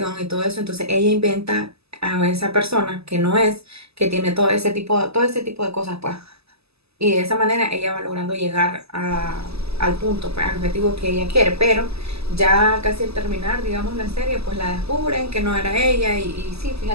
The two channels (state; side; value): late; left; 0.79 ms